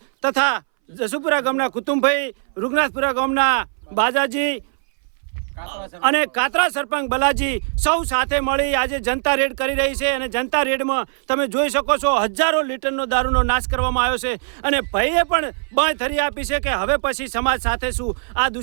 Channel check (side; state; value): left; silent; 63 dB below the other